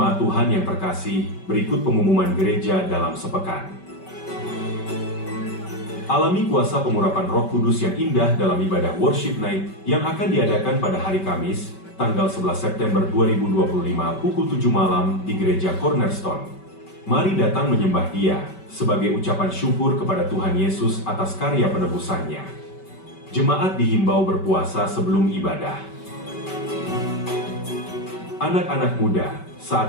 Tuhan yang terkasih, berikut pengumuman gereja dalam sepekan. Alami kuasa pengurapan Roh Kudus yang indah dalam ibadah Worship Night yang akan diadakan pada hari Kamis, tanggal 11 September 2025 pukul 7 malam di Gereja Cornerstone. Mari datang menyembah Dia sebagai ucapan syukur kepada Tuhan Yesus atas karya penebusannya. Jemaat dihimbau berpuasa sebelum ibadah. Anak-anak muda,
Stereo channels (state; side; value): late; right; 5.2 ms